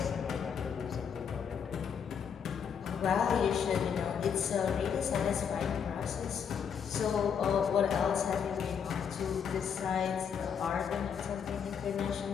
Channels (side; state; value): right; quieter; 7.3 dB